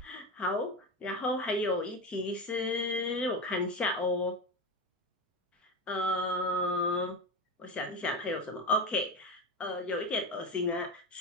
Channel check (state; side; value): normal; both; correlation 0.20